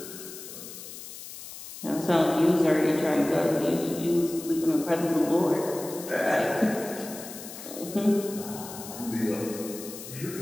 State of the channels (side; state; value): left; noise; hiss, 12 dB below the sound